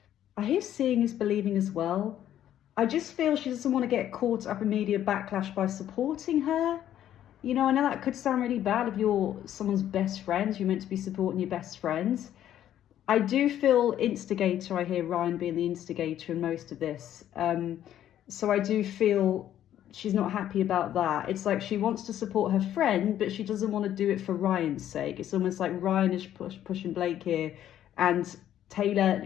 I hear seeing is believing as well. I just feel she doesn't want to get caught up in media backlash by supporting her. You know, I know that could sound really bad if you're someone's best friend. You're meant to be supporting your best friends. I do feel instigator. I hear Ryan being the instigator in most of this. So I do feel she's not happy about that. It's like she wants to support her friend, but she doesn't want to do it for Ryan's sake. It's almost like Ryan is pushing Blake here, and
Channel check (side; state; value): right; quieter; 11.4 dB